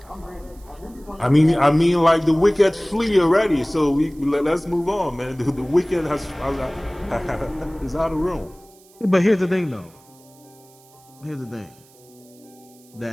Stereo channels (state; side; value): noise; right; hiss, 28 dB below the sound